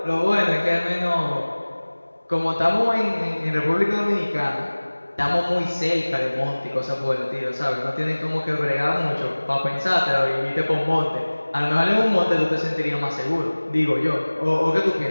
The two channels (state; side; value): inverted; both; correlation -1.00